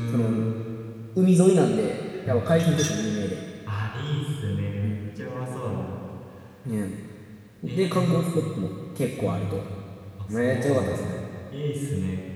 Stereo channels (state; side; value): identical; both; correlation 1.00